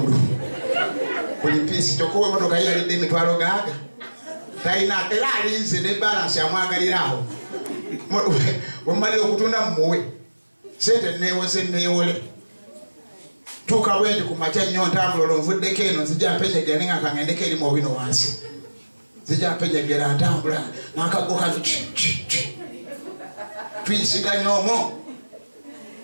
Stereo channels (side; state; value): both; inverted; correlation -1.00